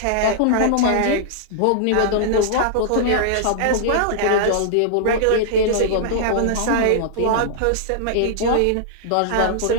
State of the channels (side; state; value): both; different; correlation -0.01